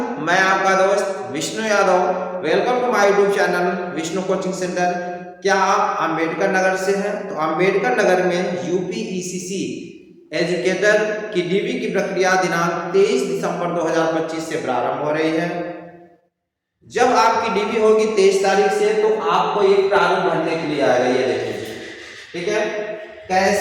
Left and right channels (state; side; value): identical; both; correlation 1.00